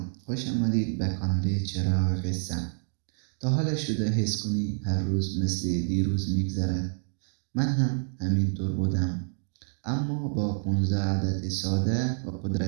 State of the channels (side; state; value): left; silent; 59 dB below the other